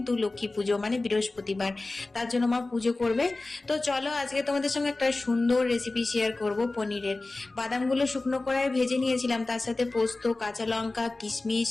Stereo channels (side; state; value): right; quieter; 3.2 dB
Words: লক্ষ্মী পুজো মানে বৃহস্পতিবার, তার জন্য মা পুজো করবে। তো চলো আজকে তোমাদের সঙ্গে একটা সুন্দর রেসিপি শেয়ার করব পনিরের। বাদামগুলো শুকনো কড়াইয়ে ভেজে নিয়েছিলাম, তার সাথে পোস্ত, কাঁচা লঙ্কা, কিশমিশ,